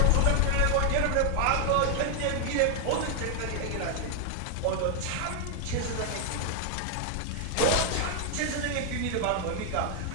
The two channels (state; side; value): different; both; correlation 0.00